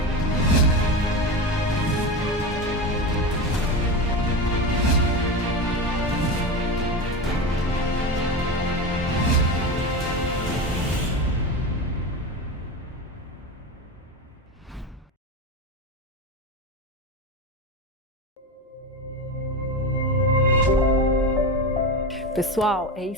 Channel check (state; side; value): normal; both; correlation 0.22